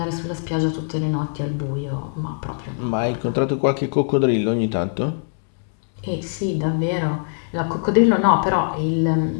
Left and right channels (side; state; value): right; silent; digital silence